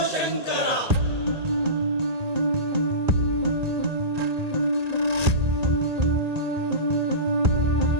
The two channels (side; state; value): left; late; 1.8 ms